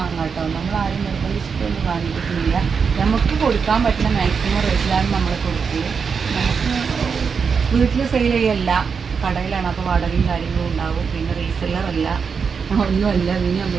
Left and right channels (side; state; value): left; quieter; 5.9 dB